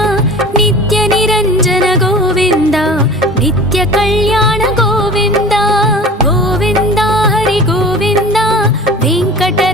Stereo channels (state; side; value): normal; both; correlation 0.39